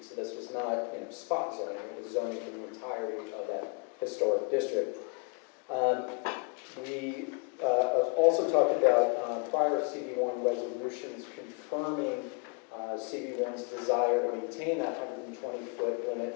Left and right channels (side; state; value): right; quieter; 34.2 dB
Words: So this was not spot zoning, it was zoning for the entirety of that historic district. We also talked about prior CB1 resolutions confirming CB1's desire to maintain that 120-foot